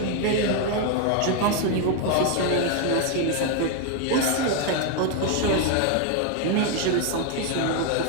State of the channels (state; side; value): different; both; correlation 0.01